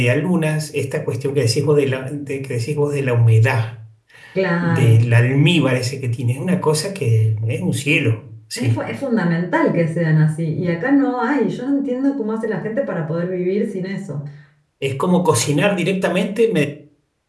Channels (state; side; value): identical; both; correlation 1.00